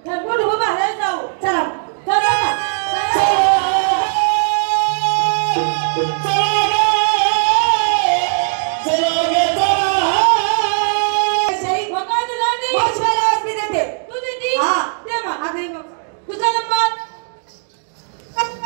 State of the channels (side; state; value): left; silent; digital silence